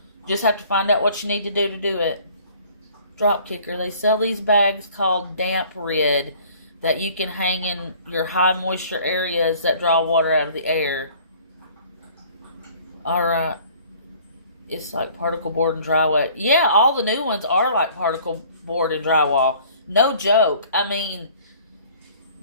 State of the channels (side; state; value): both; inverted; correlation -0.53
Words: Just have to find out what you need to do it. Drop kicker. They sell these bags called Damp Rid that you can hang in your high moisture areas that draw water out of the air. Alright. It's like particle board and drywall. Yeah, all the new ones are like particle board and drywall. No joke. I mean,